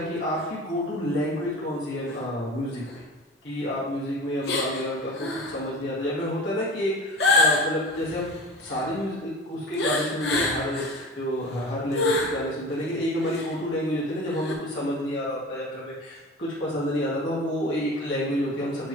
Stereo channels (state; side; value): normal; both; correlation 0.35